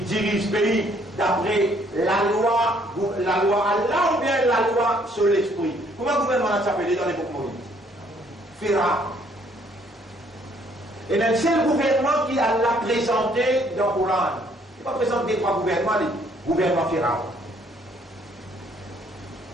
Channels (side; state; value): both; normal; correlation 0.64